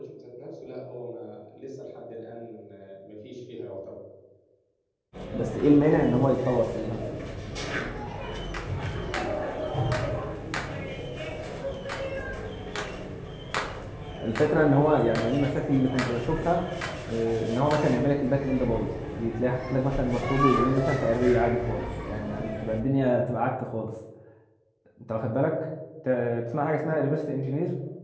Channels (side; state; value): both; identical; correlation 1.00